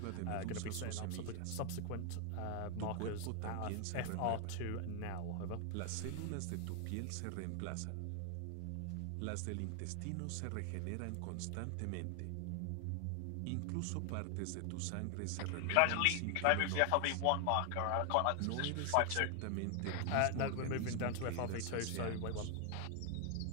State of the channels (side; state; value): both; different; correlation 0.00